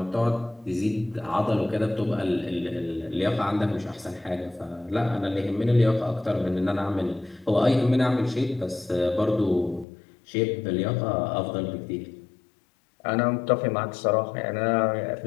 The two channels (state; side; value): drops out; right; at 9.9 s